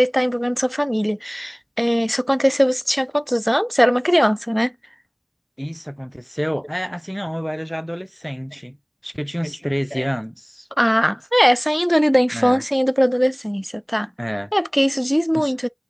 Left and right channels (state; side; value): identical; both; correlation 1.00